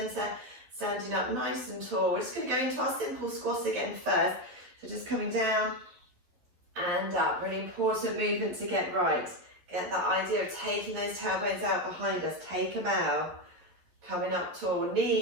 standing up nice and tall. We're just going to go into our simple squat again first. So just coming down and up. Really important movement to get right. Get that idea of taking those tailbones out behind us. Take them out. Coming up tall.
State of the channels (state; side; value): late; left; 11 ms